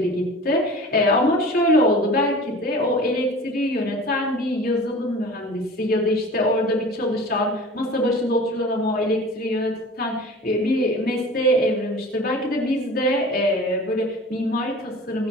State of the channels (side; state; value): both; normal; correlation 0.40